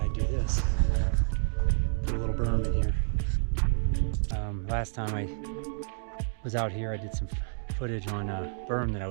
do this. Put a little berm in here. Last time I was out here, I did some footage on a berm that I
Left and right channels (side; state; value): left; silent; digital silence